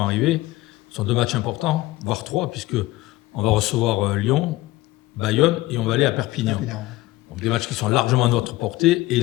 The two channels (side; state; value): right; quieter; 18.3 dB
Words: arriver sont 2 matchs importants, voire 3, puisque on va recevoir Lyon, Bayonne et on va aller à Perpignan. Donc des matchs qui sont largement à notre portée et